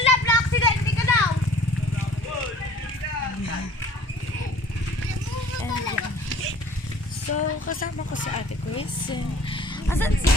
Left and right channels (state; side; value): normal; both; correlation 0.50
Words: na-accident ka daw! So, kasama ko si Ate Chris. Asan si